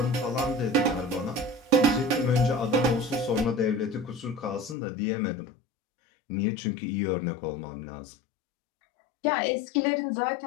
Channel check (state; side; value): drops out; right; at 4.8 s